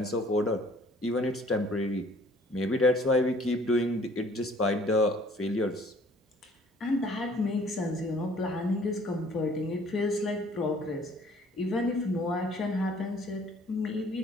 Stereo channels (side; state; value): both; normal; correlation 0.56